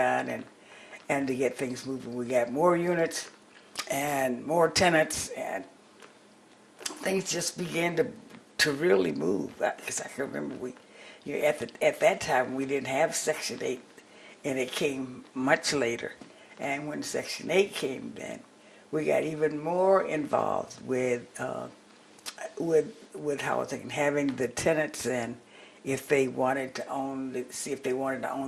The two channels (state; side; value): identical; both; correlation 1.00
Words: and to get things moving. We got more units and more tenants, and things just began to really move. Because I can remember at that time we didn't have Section 8, and it came much later. And when Section 8 came, then we got even more involved with housing, having the tenants in, if they wanted to see if they wanted to